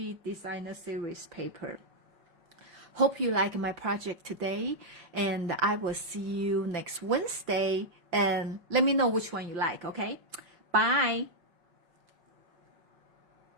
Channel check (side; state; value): left; late; 5.8 ms